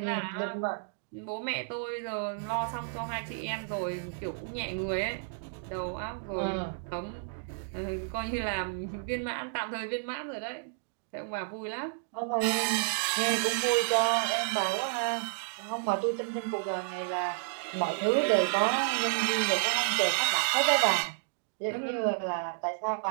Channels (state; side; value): silent; left; digital silence